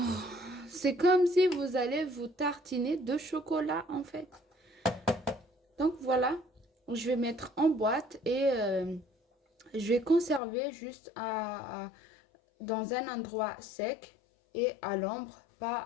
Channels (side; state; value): right; drops out; at 10.4 s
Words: C'est comme si vous allez vous tartiner de chocolat en fait. Donc voilà, je vais mettre en boîte et je vais conserver juste dans un endroit sec et à l'ombre, pas